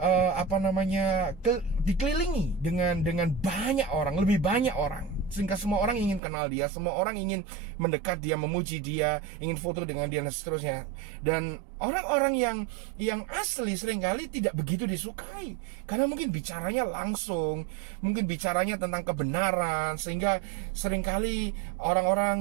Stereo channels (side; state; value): left; drops out; at 6.2 s